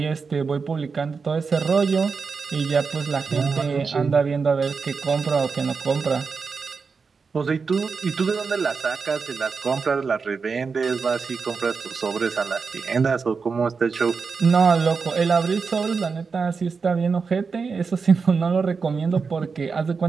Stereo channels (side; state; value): left; quieter; 5.1 dB